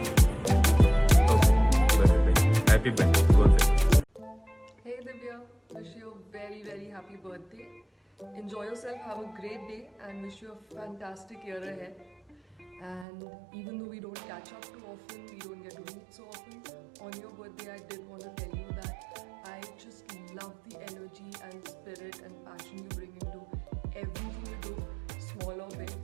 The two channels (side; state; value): left; drops out; at 13.1 s